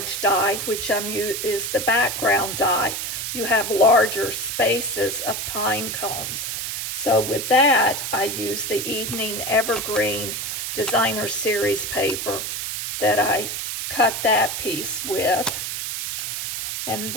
die, which is the background die, you have larger spaces of pine cones. So with that, I use the Evening Evergreen Designer Series paper that I cut that piece with. And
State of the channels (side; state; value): right; noise; hiss, 4 dB below the sound